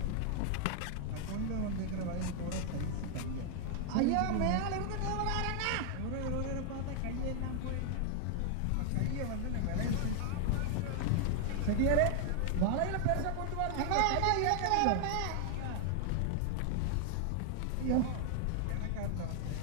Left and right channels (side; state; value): both; different; correlation 0.00